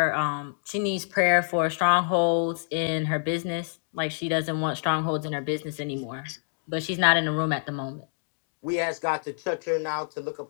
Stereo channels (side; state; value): right; silent; digital silence